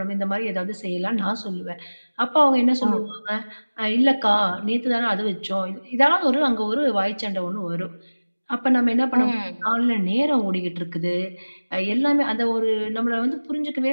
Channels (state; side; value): inverted; both; correlation -1.00